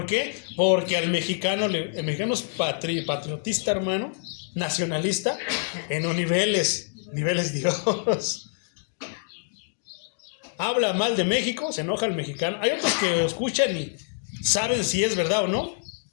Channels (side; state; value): right; silent; digital silence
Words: qué? Porque el mexicano es patriotista, hermano, nacionalista, en los niveles Dios. Habla mal de México, se enoja el mexicano. Hay otros que escuchan y saben si es verdad o no.